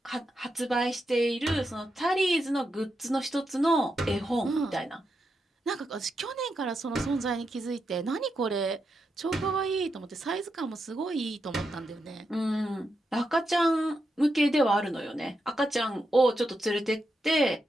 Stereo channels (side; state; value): both; normal; correlation 0.85